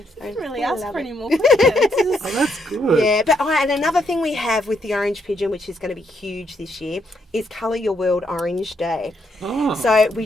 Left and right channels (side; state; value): both; normal; correlation 0.75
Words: really ask for any more Oh, that's good. Yeah, but and another thing we have with the Orange Pigeon, which is going to be huge this year, is Colour Your World Orange Day. Oh. So we